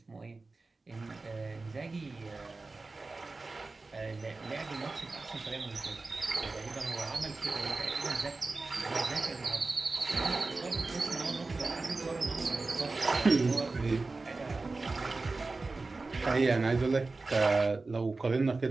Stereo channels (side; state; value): left; quieter; 3.6 dB